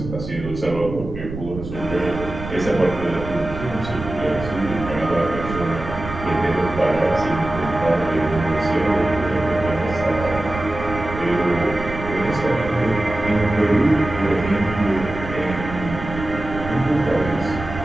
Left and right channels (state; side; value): noise; right; rumble, 9 dB below the sound